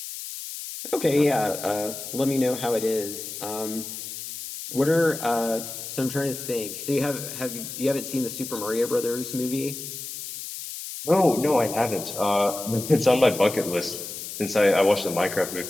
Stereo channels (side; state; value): left; noise; hiss, 9 dB below the sound